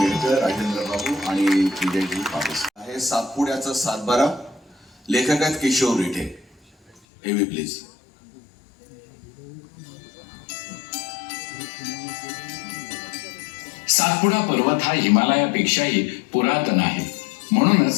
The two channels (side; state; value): right; drops out; at 7.0 s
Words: राजेंद्र बाबू आणि विजयजी पाटील. आहे सातपुड्याचा सातबारा. लेखक आहेत किशोर रिठे. एव्ही प्लीज. सातपुडा पर्वत हा हिमालयापेक्षाही पुरातन आहे.